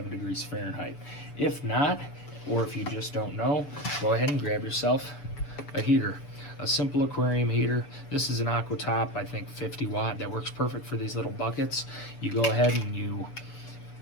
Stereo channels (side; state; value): right; late; 6.9 ms